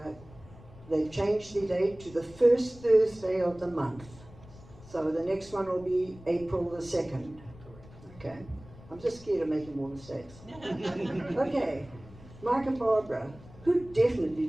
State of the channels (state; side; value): noise; left; rumble, 20 dB below the sound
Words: they've changed the date to the first Thursday of the month. So the next one will be April the 2nd. Okay, I'm just scared of making more mistakes. Okay, Mike and Barbara, who definitely